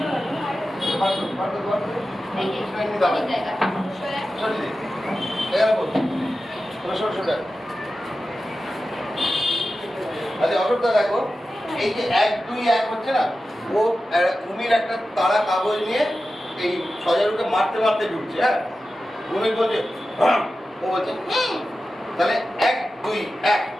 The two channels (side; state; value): both; normal; correlation 0.93